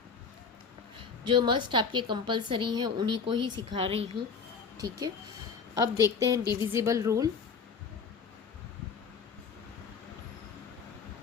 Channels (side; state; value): right; quieter; 5.6 dB